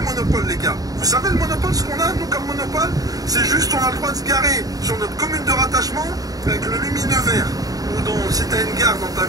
les gars. Vous savez le monopole, ce qu'on a, nous, comme monopole? C'est juste, on a le droit de se garer sur notre commune de rattachement avec le lumineux vert. Ou si tu as une gare dans ta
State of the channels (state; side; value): late; left; 0.18 ms